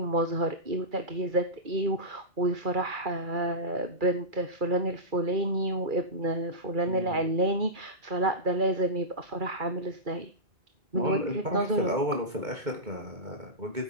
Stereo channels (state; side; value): late; left; 2.2 ms